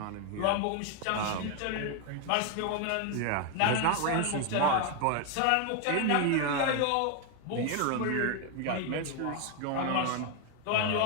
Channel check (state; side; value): different; both; correlation 0.01